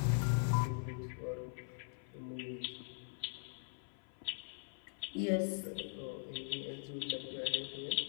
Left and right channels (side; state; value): right; silent; 50 dB below the other